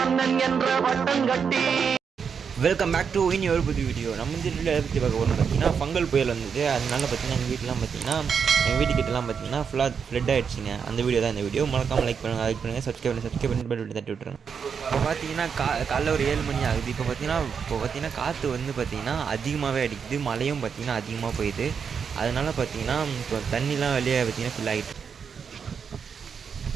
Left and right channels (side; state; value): left; quieter; 6.6 dB